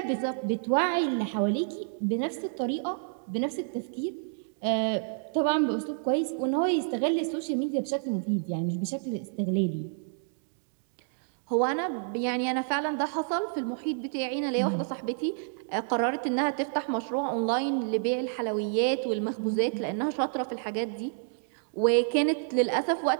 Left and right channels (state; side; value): silent; left; digital silence